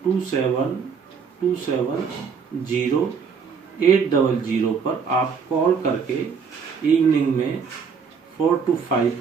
पर आप कॉल करके इवनिंग में 4 to 5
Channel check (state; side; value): quieter; left; 6.0 dB